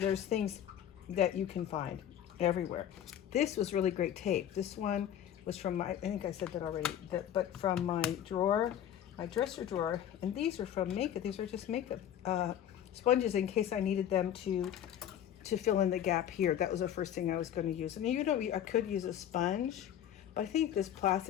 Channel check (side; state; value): right; quieter; 10.4 dB